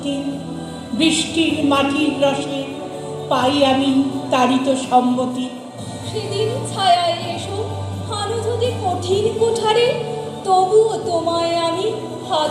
বৃষ্টির মাটির রসে পাই আমি তারিত সম্মতি। সেদিন ছায়ায় এসো হানো যদি কঠিন কুঠারে, তবুও তোমায় আমি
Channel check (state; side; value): identical; both; correlation 1.00